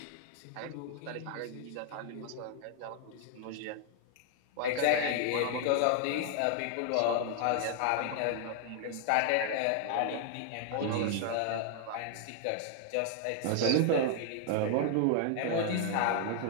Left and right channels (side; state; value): both; different; correlation 0.00